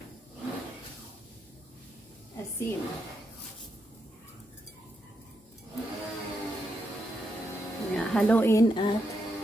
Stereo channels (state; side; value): normal; both; correlation 0.82